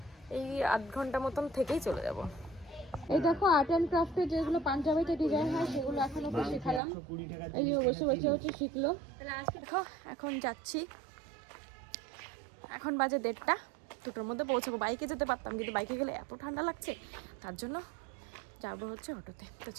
এই আধ ঘন্টা মতন থেকেই চলে যাবো। এই দেখো আর্ট অ্যান্ড ক্রাফটে যেগুলো পাঞ্জাবিতে ডিজাইন হয় সেগুলো এখন ওকে শেখালাম। এই যে বসে বসে শিখলো। দেখো এখন যাচ্ছি, এখন বাজে 1:30, 2টোর মধ্যে পৌঁছাবো। বাইকে যেতে পারতাম, কিন্তু বাইকে গেলে এত ঠান্ডা লাগছে, তার জন্য যাবো হচ্ছে অটোতে। তো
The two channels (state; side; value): drops out; left; at 6.8 s